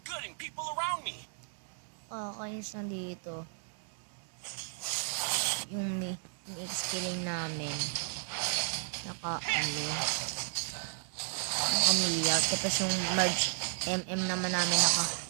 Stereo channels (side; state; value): left; silent; digital silence